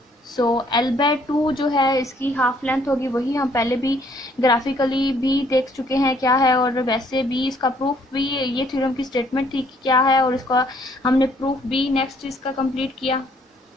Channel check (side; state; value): both; normal; correlation 0.64